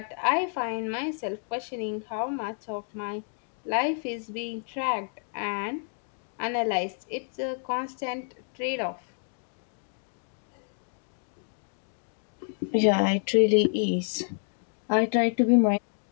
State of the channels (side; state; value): right; silent; 58 dB below the other